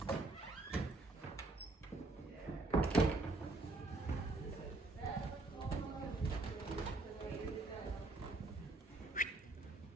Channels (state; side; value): quieter; left; 3.0 dB